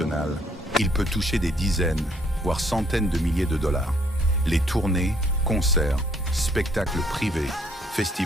il peut toucher des dizaines, voire centaines de milliers de dollars. Les tournées, concerts, spectacles privés,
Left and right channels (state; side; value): normal; both; correlation 0.65